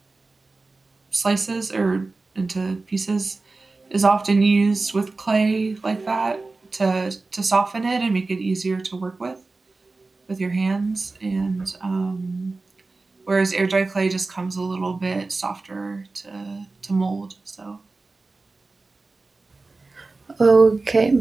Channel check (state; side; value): quieter; left; 3.6 dB